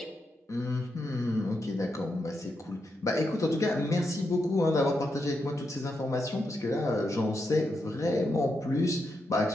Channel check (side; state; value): both; normal; correlation 0.84